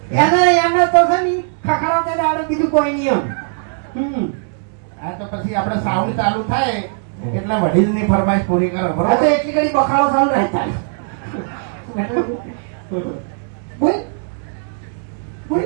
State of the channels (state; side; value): silent; left; digital silence